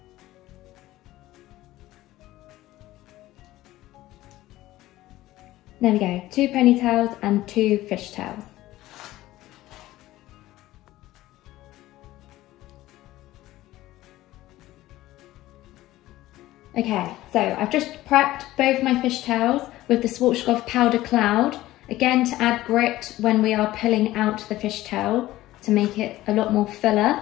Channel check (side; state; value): right; quieter; 16.1 dB